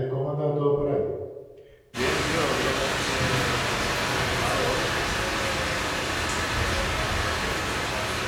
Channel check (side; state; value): both; identical; correlation 1.00